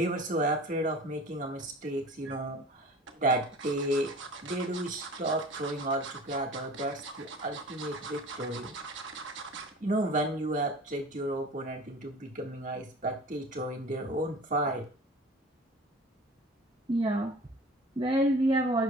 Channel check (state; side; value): normal; both; correlation 0.40